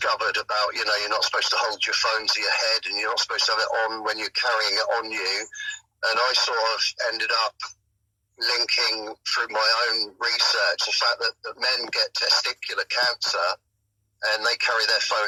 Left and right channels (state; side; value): identical; both; correlation 1.00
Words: about, you're not supposed to hold your phone to your head and you're not supposed to have it on when you're carrying it on you. And I sort of ended up linking through my own research the fact that men get testicular cancer and they carry their